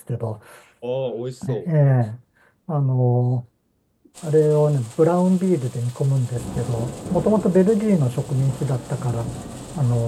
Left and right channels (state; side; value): identical; both; correlation 1.00